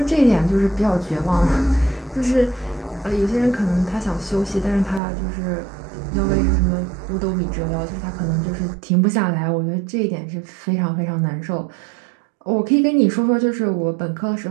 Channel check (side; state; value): left; drops out; at 5.0 s